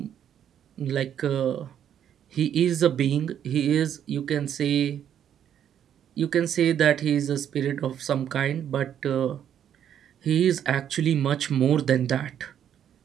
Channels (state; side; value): quieter; left; 9.6 dB